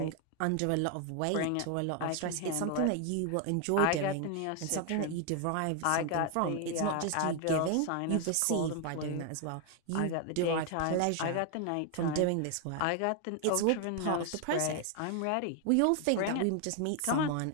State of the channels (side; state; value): both; different; correlation 0.00